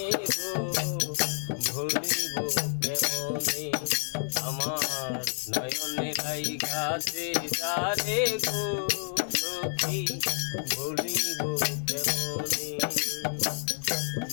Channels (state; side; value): silent; right; digital silence